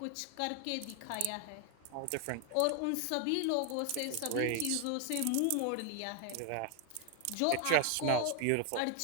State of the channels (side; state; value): both; different; correlation 0.00